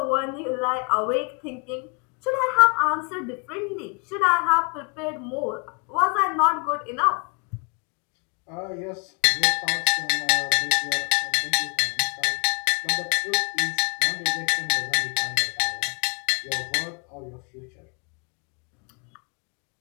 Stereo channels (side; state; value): right; quieter; 34.1 dB